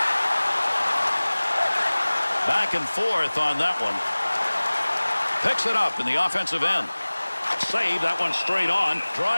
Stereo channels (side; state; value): both; inverted; correlation -1.00